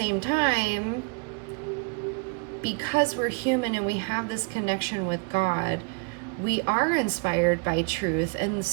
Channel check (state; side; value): quieter; left; 32.8 dB